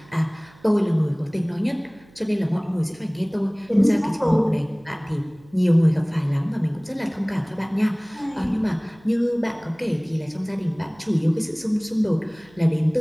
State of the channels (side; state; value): right; noise; hum, 27 dB below the sound